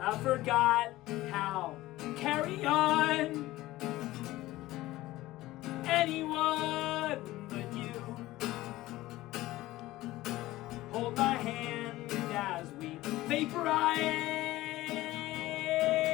I forgot how to carry on. Anyone but you. Hold my hand as we vaporize.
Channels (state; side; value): quieter; right; 17.2 dB